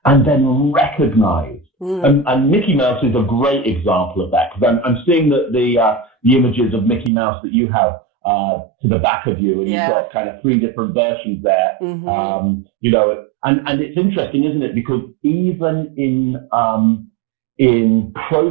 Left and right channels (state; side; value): drops out; left; at 7.1 s